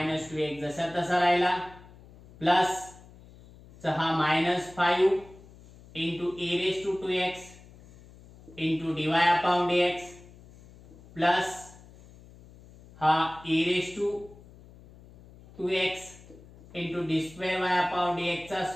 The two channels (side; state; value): left; noise; hum, 22 dB below the sound